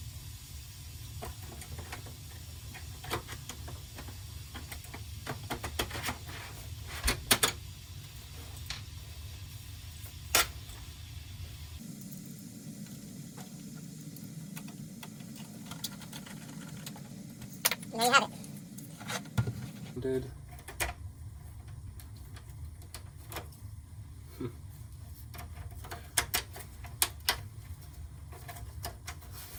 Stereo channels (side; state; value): both; identical; correlation 1.00